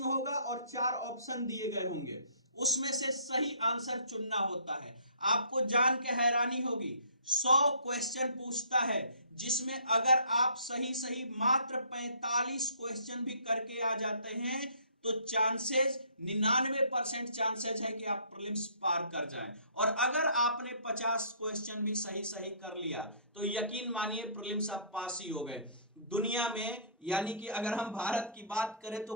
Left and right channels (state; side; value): inverted; both; correlation -0.55